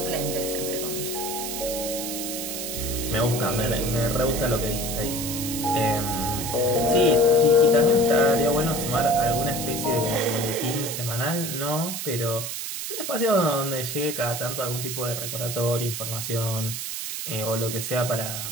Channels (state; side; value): noise; right; hiss, 5 dB below the sound